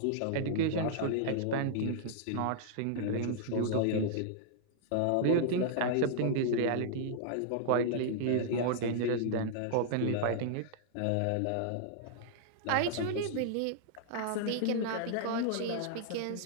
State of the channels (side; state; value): both; different; correlation -0.01